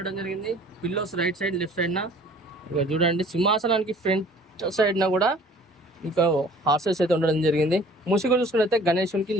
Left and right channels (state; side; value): normal; both; correlation 0.51